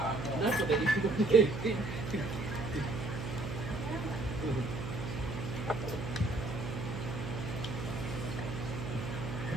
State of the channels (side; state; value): right; noise; hum, 6 dB below the sound